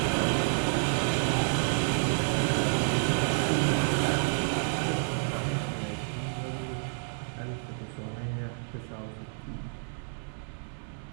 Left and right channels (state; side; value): silent; left; digital silence